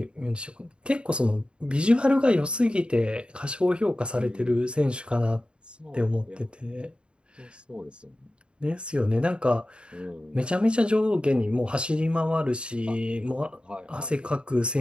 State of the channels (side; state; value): left; late; 0.054 ms